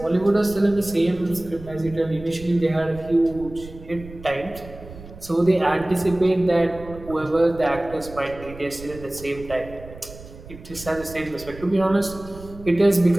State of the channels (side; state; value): right; noise; rumble, 16 dB below the sound